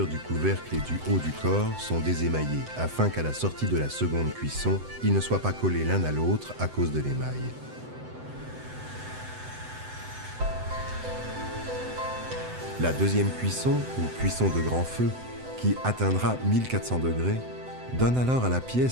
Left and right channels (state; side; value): late; left; 7.9 ms